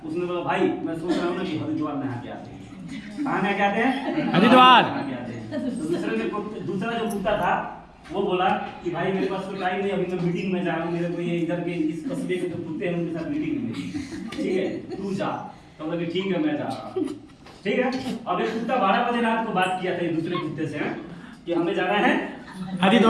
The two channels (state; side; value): identical; both; correlation 1.00